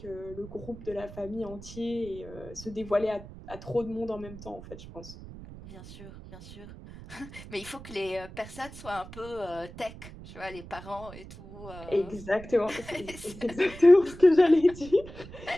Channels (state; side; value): noise; right; rumble, 15 dB below the sound